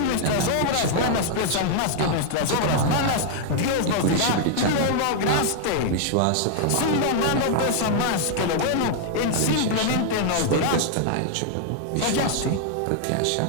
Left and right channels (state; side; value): different; both; correlation 0.00